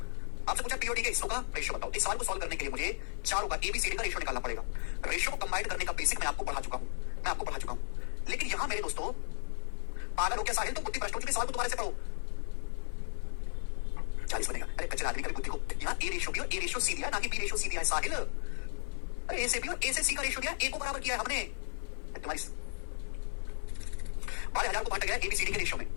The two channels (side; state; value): right; silent; digital silence